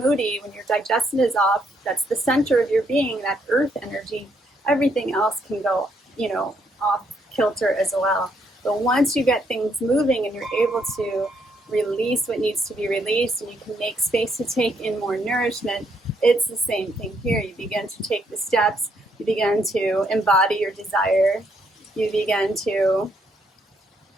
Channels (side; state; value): both; normal; correlation 0.73